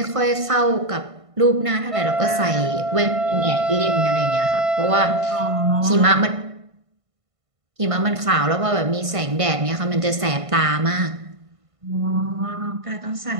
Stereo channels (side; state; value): left; late; 1.5 ms